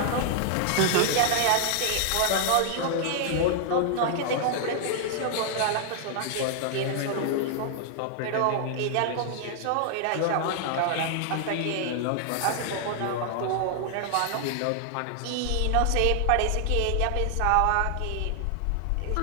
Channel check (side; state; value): both; different; correlation 0.00